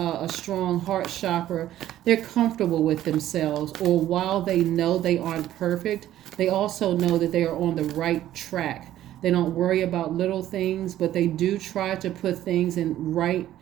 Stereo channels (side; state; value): left; quieter; 12.9 dB